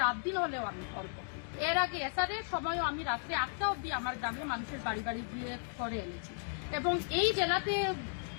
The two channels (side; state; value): right; silent; 54 dB below the other